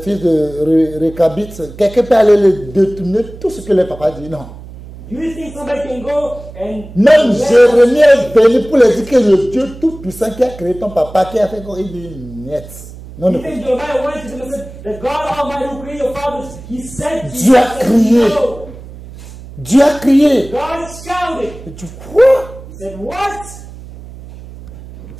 Récabites, quelqu'un peut aller les détourner tout ce que les papas disent? Non. Do you think somebody can go and... Même Jérémie est venu pour leur dire que le Dieu Tout-Puissant qui a créé ton papa, qui a fait quoi, il dit niet. Non, You non. think Jeremiah went to them and said, that God Almighty who created your fathers, He said to Dieu a crié. no. Dieu a crié. God shouted. Et tu crois? He said, what?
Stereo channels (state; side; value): noise; right; hum, 16 dB below the sound